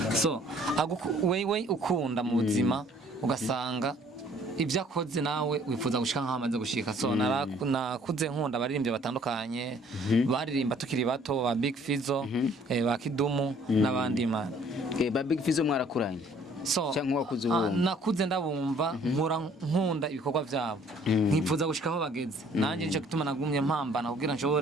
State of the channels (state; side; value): normal; both; correlation 0.58